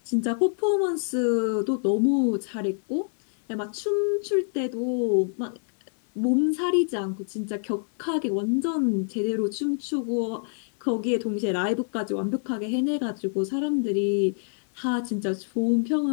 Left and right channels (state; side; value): silent; right; 61 dB below the other